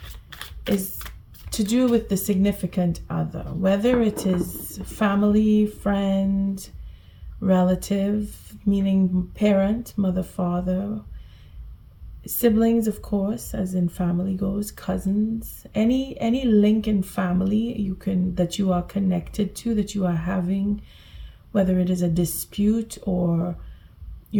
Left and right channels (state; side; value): identical; both; correlation 1.00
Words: is to do with the significant other, whether it is family, friend, relative, meaning parent, mother, father, siblings, of course, as in family goes, cousins, any link in family that you are connected to, that you are having, whether it is a dispute or